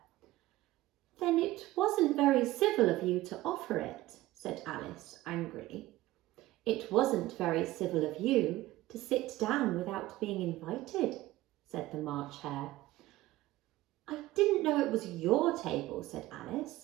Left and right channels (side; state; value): left; quieter; 17.2 dB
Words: Then it wasn't very civil of you to offer it, said Alice angrily. It wasn't very civil of you to sit down without being invited, said the March Hare. I didn't know it was your table, said